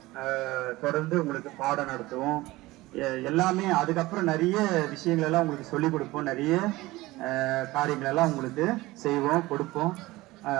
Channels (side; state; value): left; quieter; 19.3 dB